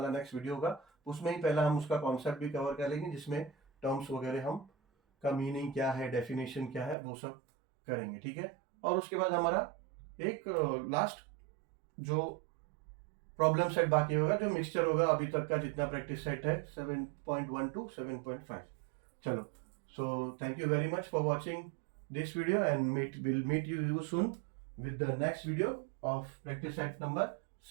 नेक्स्ट वीडियो होगा उसमें ही पहला हम उसका कॉन्सेप्ट भी कवर कर लेंगे, जिसमें टर्म्स वगैरह हम का मीनिंग क्या है, डेफिनेशन क्या है, वो सब करेंगे, ठीक है। और उसके बाद हमारा एक लास्ट जो प्रॉब्लम सेट बाकी होगा, जो मिक्सचर होगा अभी तक का जितना प्रैक्टिस सेट है 7.1 to 7.5। चलो, so thank you very much for watching this video and we'll meet you soon with the next video of practice set number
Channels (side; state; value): left; drops out; at 7.0 s